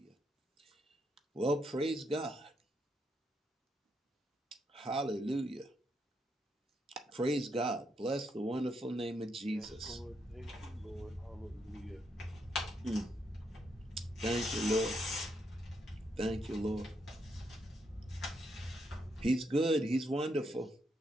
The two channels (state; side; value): normal; both; correlation 0.78